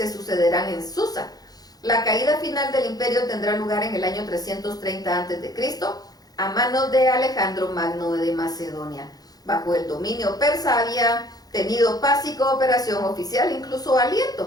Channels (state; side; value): late; right; 0.19 ms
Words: sucederán en Susa. La caída final del imperio tendrá lugar en el año 330 a.C. a manos de Alejandro Magno de Macedonia. Bajo el dominio persa había tenido paz y cooperación oficial, incluso